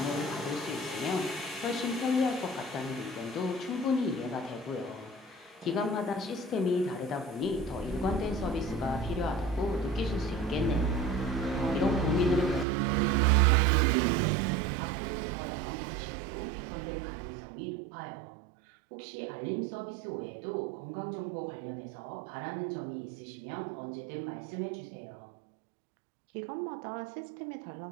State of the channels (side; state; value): left; drops out; at 12.7 s